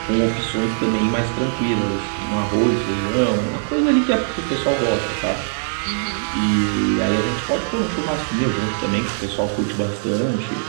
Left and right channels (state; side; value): silent; left; digital silence